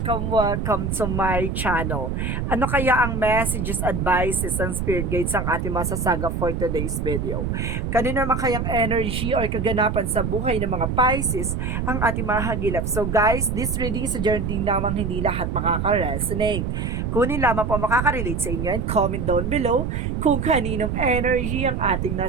to my channel. Ano kaya ang messages, advices, and spirit guides ang ating masasaga for today's video? Kanino naman kayang energy or kaganapan sa buhay ng mga Pisces ang ating mahagilap? So guys, this reading is a journey namang hindi lahat makaka-resonate. Kunin lamang po makaka-relate sa inyo and comment down below kung kaninong energy ang ating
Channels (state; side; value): noise; right; rumble, 2 dB below the sound